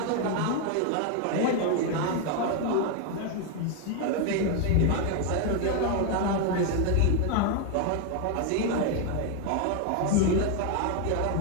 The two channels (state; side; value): different; both; correlation 0.01